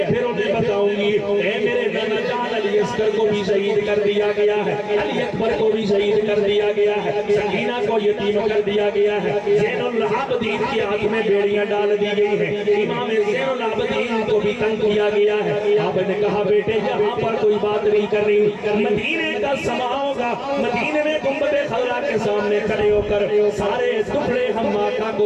پھر انہیں بتاؤں گی اے میرے نانا جان علی اصغر کو بھی شہید کر دیا گیا ہے, علی اکبر کو بھی شہید کر دیا گیا ہے, سکینہ کو یتیم کر دیا گیا ہے, زین العابدین کی ہاتھ میں بیڑیاں ڈال دی گئی ہیں, امام زین العابدین کو بھی تنگ کیا گیا ہے. آپ نے کہا بیٹے یہاں پر کوئی بات نہیں کرنی, مدینے کا سما ہوگا, مدینے میں گنبد خضرا کے سامنے کھڑے ہو کر سارے دکھڑے ہم آقا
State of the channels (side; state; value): both; identical; correlation 1.00